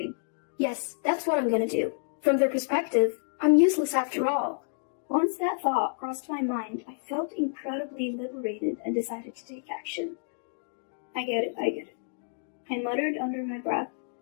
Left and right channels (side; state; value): right; silent; digital silence